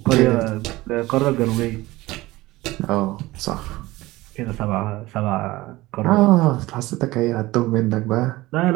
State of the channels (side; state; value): left; quieter; 19.0 dB